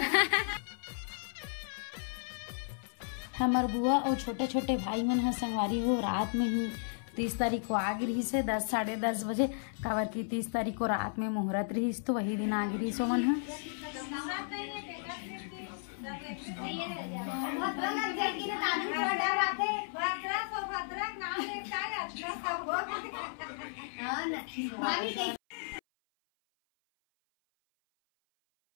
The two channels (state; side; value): silent; right; 55 dB below the other